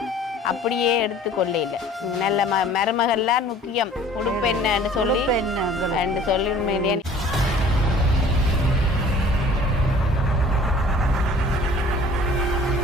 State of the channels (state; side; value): normal; both; correlation 0.50